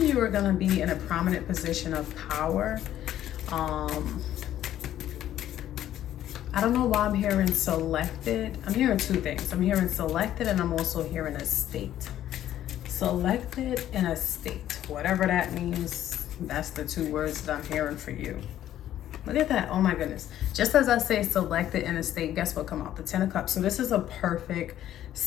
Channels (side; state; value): right; quieter; 12.1 dB